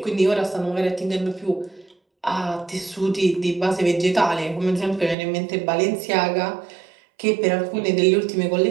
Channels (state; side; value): drops out; left; at 5.2 s